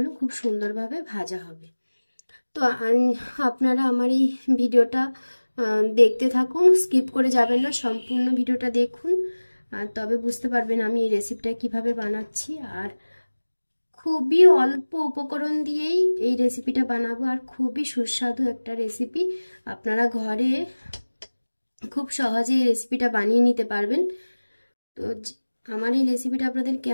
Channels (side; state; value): both; inverted; correlation -1.00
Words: খুব সুন্দরভাবে ভাজা হবে। তো আপনারা আমার এই ভিডিওটা দেখতে থাকুন, স্কিপ করে যাবেন না, সম্পূর্ণ ভিডিওটা দেখুন। তবে বুঝতে পারবেন আমি এই রেসিপিটা কিভাবে বানাচ্ছি। আর খুবই অল্প উপকরণ দিয়েই এই রেসিপিটা বানাবো, আর খুবই সুস্বাদু একটা রেসিপি। আপনারা ঘরে খুব সহজে এই রেসিপিটা বানিয়ে নিতে পারবেন। তো আমার এই রেসিপিটা আপনাদের